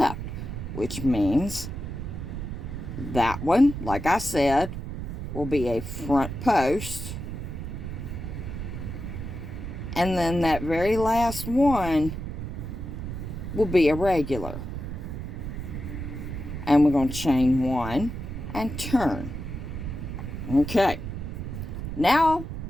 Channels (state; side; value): noise; right; rumble, 6 dB below the sound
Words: which means that one, like I said, will be a front post And then that very last one will be a regular. And we're going to chain 1 and turn. Okay. Now